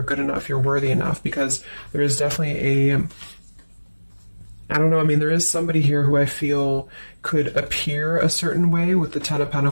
good enough, you're worthy enough, because there is definitely I don't know, there is somebody here who I feel could appear a certain way with the Ten of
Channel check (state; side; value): inverted; both; correlation -1.00